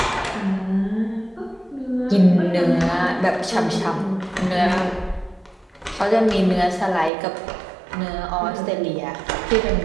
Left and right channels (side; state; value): left; drops out; at 7.1 s